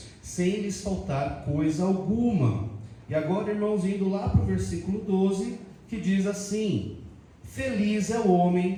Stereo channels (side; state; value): both; identical; correlation 1.00